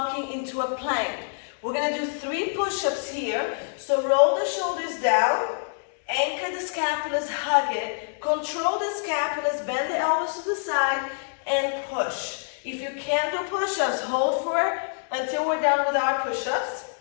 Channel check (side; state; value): right; silent; digital silence